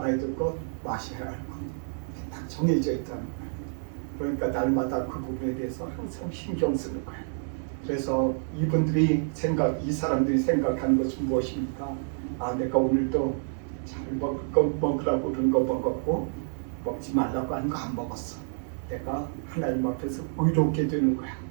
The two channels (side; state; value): left; silent; digital silence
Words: 될 것, 마셔야 할 것 딱 정해져 있다는 거예요. 그러니까 날마다 그 부분에 대해서 항상 신경 쓰는 거예요. 그래서 이 사람들이 생각하는 것은 무엇입니까? 내가 오늘도 잘 먹으라고 그런 거 먹었고 먹지 말라고 하는 거 안 먹었어. 내가 하나님 앞에서 의롭게 되는 거야.